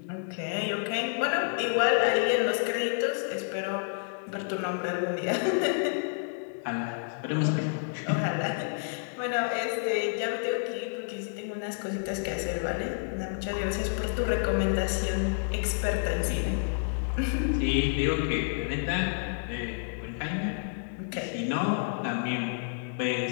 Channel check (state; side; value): silent; right; digital silence